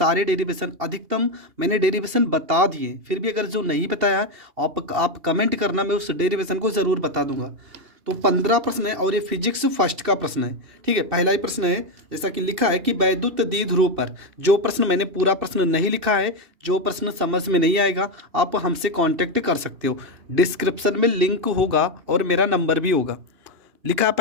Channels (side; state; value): left; late; 2.9 ms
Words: डेरिवेशन अधिकतम मैंने डेरिवेशन बता दिए। फिर भी अगर जो नहीं बताया है आप कमेंट करना, मैं उस डेरिवेशन को ज़रूर बता दूंगा। तो 15 प्रश्न है और ये फिजिक्स फर्स्ट का प्रश्न है। ठीक है, पहला ही प्रश्न है, जैसा कि लिखा है कि वैद्युत द्विध्रुव पर। जो प्रश्न मैंने पूरा प्रश्न नहीं लिखा है, जो प्रश्न समझ में नहीं आएगा, आप हमसे कांटेक्ट कर सकते हो। डिस्क्रिप्शन में लिंक होगा और मेरा नंबर भी होगा। लिखा है